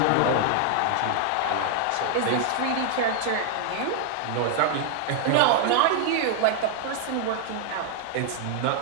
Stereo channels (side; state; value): both; different; correlation 0.00